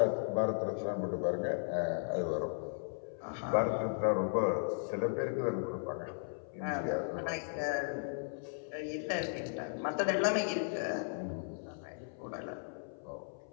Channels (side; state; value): right; silent; 54 dB below the other